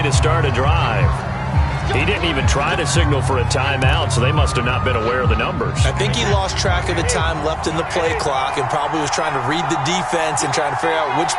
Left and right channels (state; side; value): identical; both; correlation 1.00